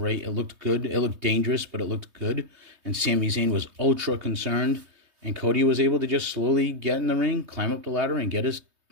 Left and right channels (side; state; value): left; late; 3.2 ms